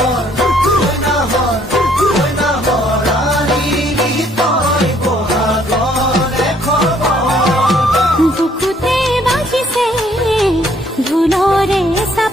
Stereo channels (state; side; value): normal; both; correlation 0.64